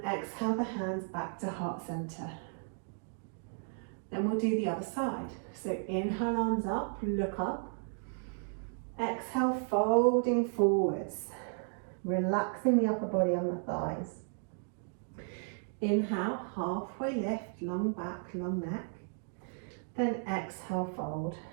exhale the hands back to heart center. Then we'll do the other side. So inhale, arms up, look up. Exhale, folding forwards. Relaxing the upper body on the thighs. Inhale, halfway lift, long back, long neck. Then exhale, fold.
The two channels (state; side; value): silent; left; 55 dB below the other